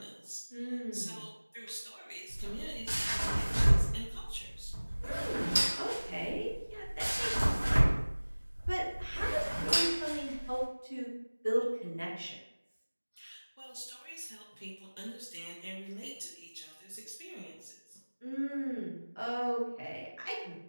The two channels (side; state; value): both; inverted; correlation -1.00